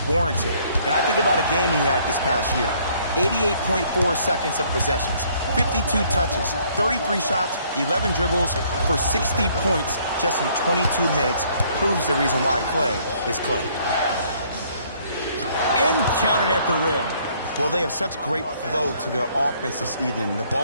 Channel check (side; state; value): both; inverted; correlation -0.63